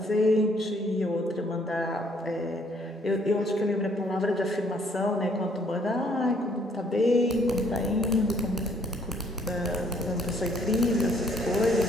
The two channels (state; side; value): normal; both; correlation 0.65